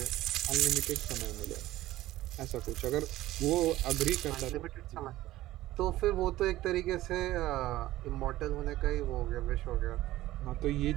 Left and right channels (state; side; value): quieter; left; 15.9 dB